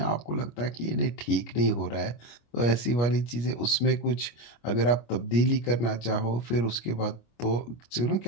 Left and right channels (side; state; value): right; late; 25 ms